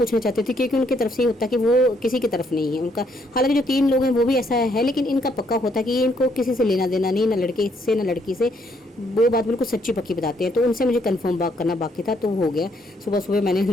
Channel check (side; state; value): both; normal; correlation 0.71